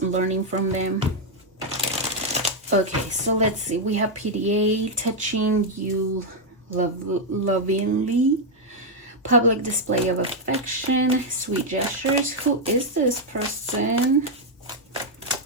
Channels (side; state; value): both; normal; correlation 0.00